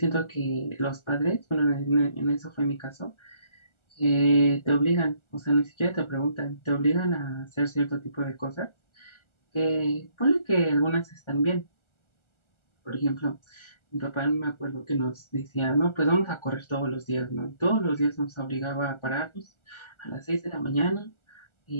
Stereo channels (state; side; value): late; right; 1.4 ms